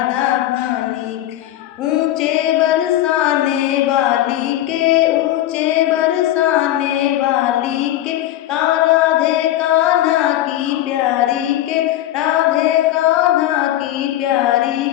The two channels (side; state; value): right; quieter; 13.7 dB